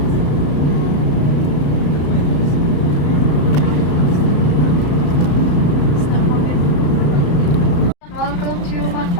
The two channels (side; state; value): right; late; 34 ms